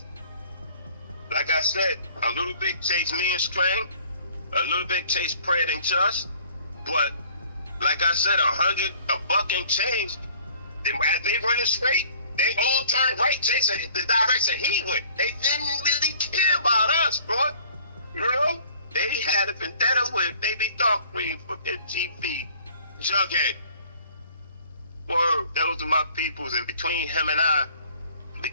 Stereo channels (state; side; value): inverted; both; correlation -0.54